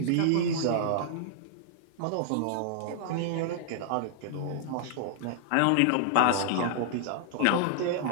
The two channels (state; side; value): different; both; correlation -0.01